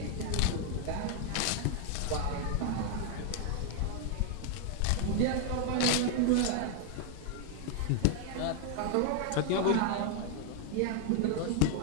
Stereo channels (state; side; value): different; both; correlation 0.00